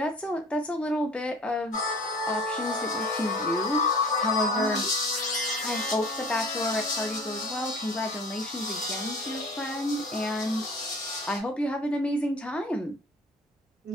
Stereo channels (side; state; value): both; normal; correlation 0.46